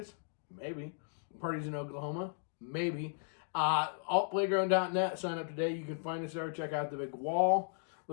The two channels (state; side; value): silent; right; digital silence